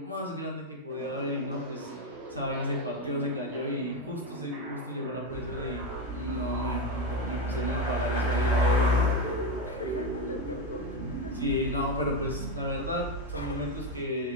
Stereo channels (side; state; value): both; normal; correlation 0.11